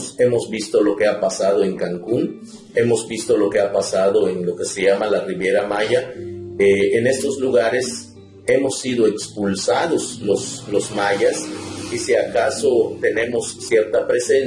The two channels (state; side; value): identical; both; correlation 1.00